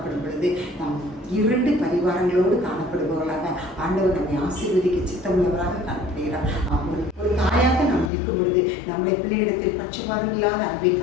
பொழுது நாம் 2 பரிவார வரங்களோடு காணப்படுபவர்களாக ஆண்டவர் நம்மை ஆசீர்வதிக்க சித்தமுள்ளவராக காணப்படுகிறார். ஒரு தாயாக நாம் இருக்கும் பொழுது நம்முடைய பிள்ளையிடத்தில் பட்சபாதம் இல்லாத அன்பை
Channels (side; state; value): right; drops out; at 8.1 s